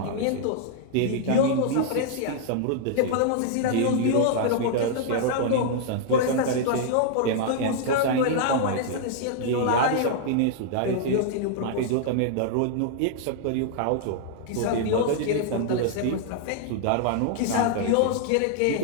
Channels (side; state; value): both; different; correlation -0.01